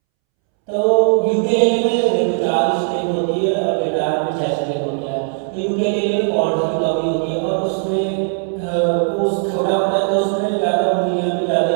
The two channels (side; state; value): left; silent; 67 dB below the other